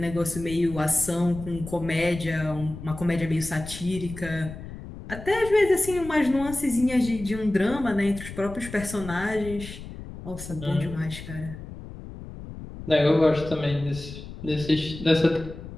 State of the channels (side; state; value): left; noise; rumble, 12 dB below the sound